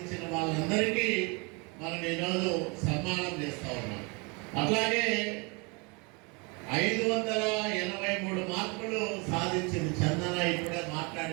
వాళ్ళందరికీ మనం ఈరోజు సన్మానం చేస్తూ ఉన్నాం. అట్లాగే 583 మార్కులు సాధించింది చందన, ఇప్పుడే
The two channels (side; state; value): left; quieter; 30.2 dB